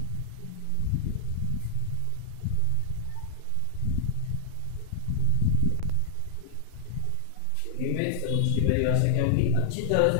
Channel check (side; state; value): both; different; correlation 0.00